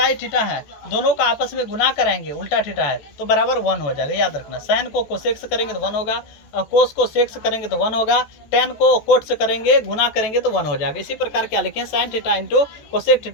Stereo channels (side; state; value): right; late; 14 ms